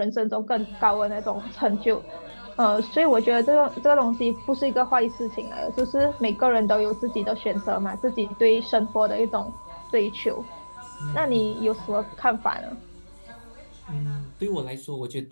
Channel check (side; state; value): both; inverted; correlation -1.00